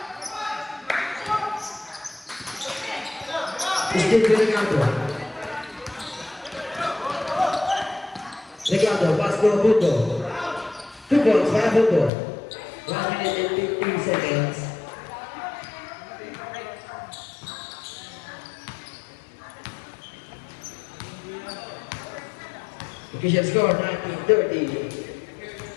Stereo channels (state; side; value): drops out; right; at 12.1 s